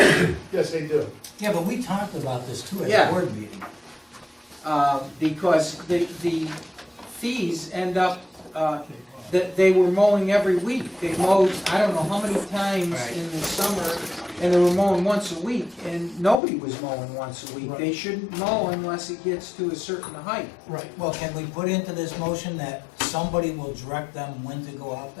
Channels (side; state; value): right; drops out; at 16.4 s